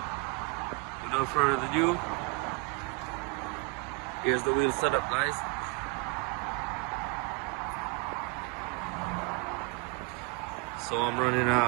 without further ado, here's the wheel setup guys. So I'm running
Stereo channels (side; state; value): left; quieter; 28.2 dB